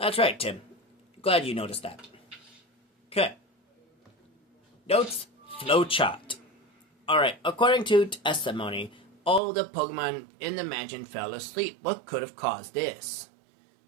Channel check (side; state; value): left; drops out; at 9.4 s